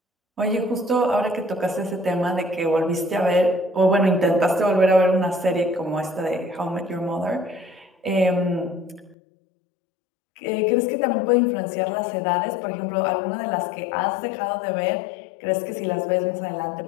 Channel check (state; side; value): drops out; right; at 9.2 s